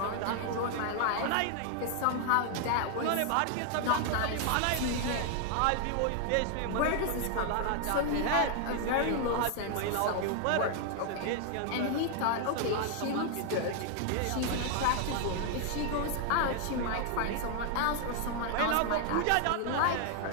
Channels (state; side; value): different; both; correlation 0.00